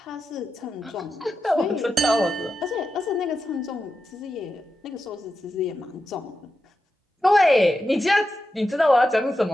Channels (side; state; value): both; normal; correlation 0.89